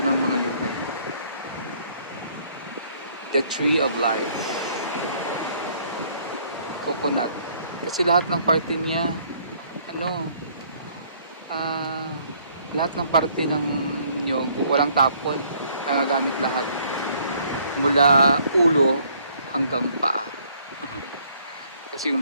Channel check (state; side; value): inverted; both; correlation -0.63